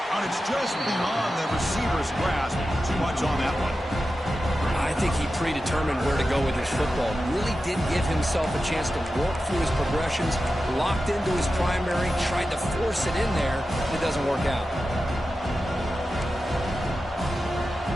And it's just beyond the receiver's grasp. Too much on that one. I think he predetermined where to go with his football. Really did give himself a chance to work through his progressions, locked into his primary, tried to force it in there. It doesn't work out.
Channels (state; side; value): normal; both; correlation 0.92